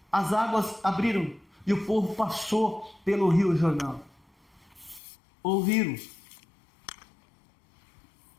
as águas abriram e o povo passou pelo Rio Jordão. Ouviram.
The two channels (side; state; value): right; drops out; at 5.0 s